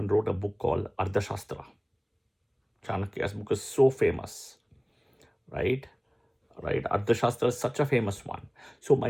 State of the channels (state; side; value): identical; both; correlation 1.00